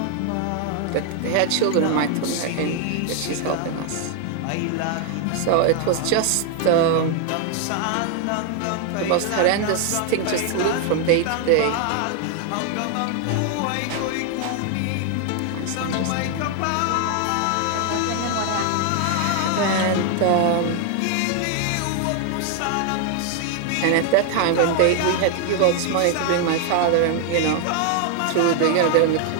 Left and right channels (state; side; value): different; both; correlation 0.00